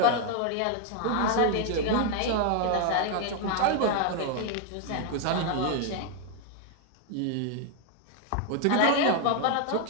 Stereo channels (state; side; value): different; both; correlation 0.00